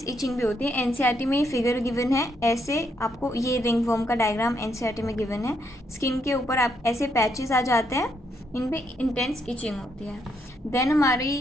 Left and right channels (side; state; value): both; normal; correlation 0.76